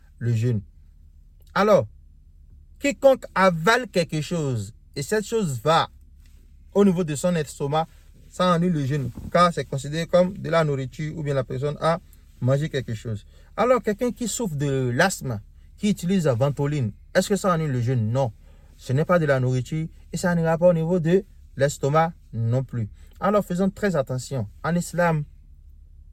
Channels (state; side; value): identical; both; correlation 1.00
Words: le jeûne. Alors, quiconque avale quelque chose et cette chose va au niveau de son estomac, ça annule le jeûne car c'est considéré comme de la nourriture ou bien la personne a mangé quelque chose. Alors, quelqu'un qui souffre de l'asthme, qui utilise la ventoline, est-ce que ça annule le jeûne? Non. Ce n'est pas de la nourriture et ça n'ira pas au niveau de l'estomac non plus. Alors, faisons très attention. En islam,